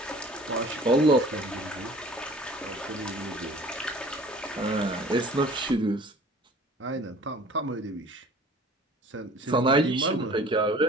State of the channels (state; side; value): normal; both; correlation 0.47